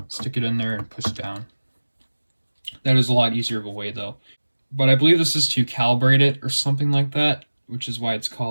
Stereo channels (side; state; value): both; inverted; correlation -1.00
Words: stick it in there, and push down. That is a lot easier of a way though. But I believe this is to calibrate it or something like that, which is why it's